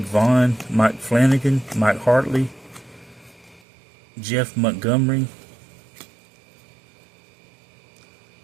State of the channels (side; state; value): left; drops out; at 3.6 s